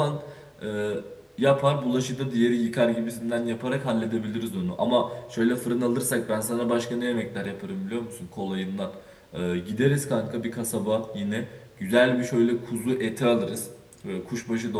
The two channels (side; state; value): both; identical; correlation 1.00